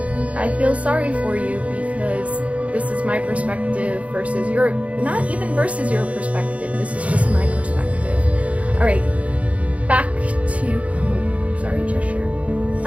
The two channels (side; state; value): left; late; 0.065 ms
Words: I feel sorry for you, because this is my perspective versus your, not even versus your perspective, this is just my perspective. Alright, back to, sorry, Cheshire.